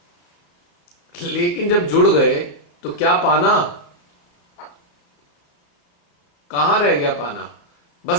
लेकिन जब जुड़ गए तो क्या पाना? कहां रह गया पाना?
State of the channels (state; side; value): late; right; 34 ms